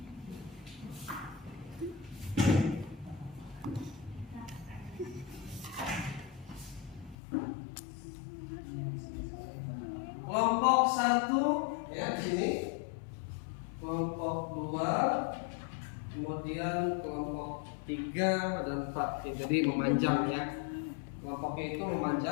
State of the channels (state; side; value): drops out; right; at 7.2 s